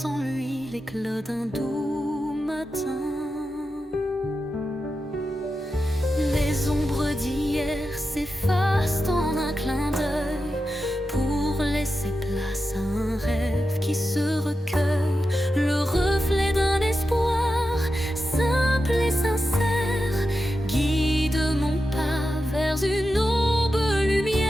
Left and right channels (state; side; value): normal; both; correlation 0.90